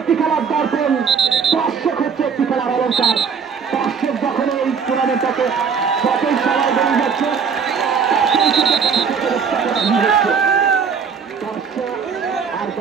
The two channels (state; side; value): quieter; left; 6.3 dB